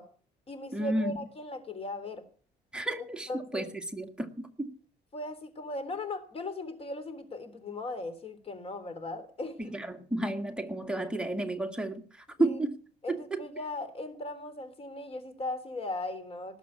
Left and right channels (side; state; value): both; normal; correlation 0.69